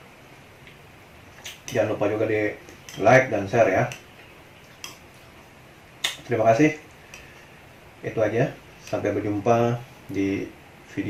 Jangan lupa juga di like dan share ya. Terima kasih. Itu aja. Sampai berjumpa di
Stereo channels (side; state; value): both; identical; correlation 1.00